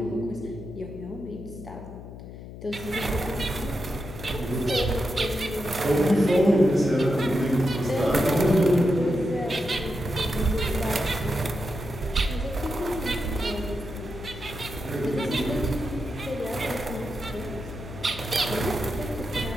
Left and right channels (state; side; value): noise; left; hum, 13 dB below the sound